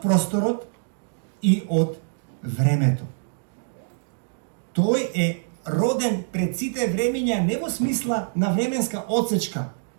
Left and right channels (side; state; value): left; silent; digital silence